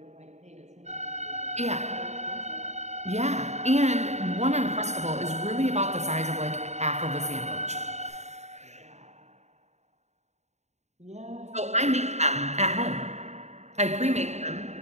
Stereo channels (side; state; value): left; late; 0.32 ms